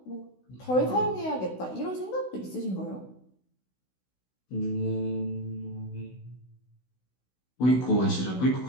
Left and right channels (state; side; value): late; right; 16 ms